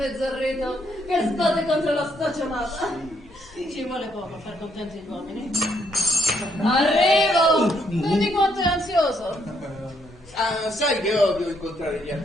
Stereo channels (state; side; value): normal; both; correlation 0.72